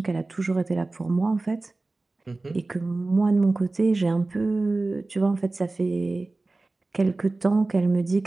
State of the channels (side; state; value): left; quieter; 3.2 dB